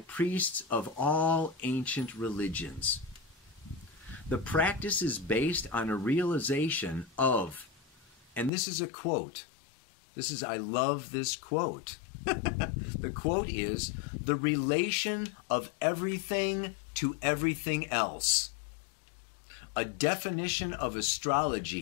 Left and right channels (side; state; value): right; drops out; at 8.5 s